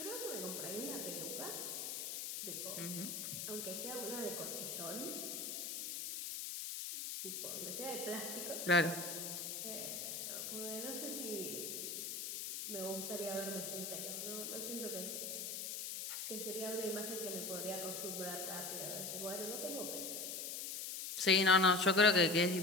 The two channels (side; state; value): left; noise; hiss, 4 dB below the sound